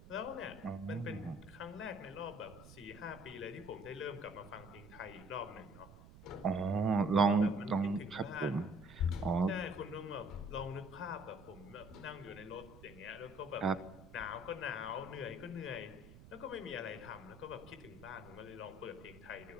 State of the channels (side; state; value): right; noise; rumble, 18 dB below the sound